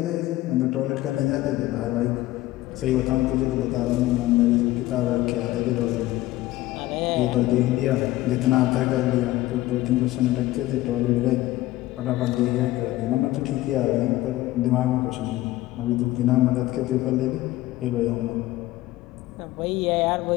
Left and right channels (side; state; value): right; quieter; 16.7 dB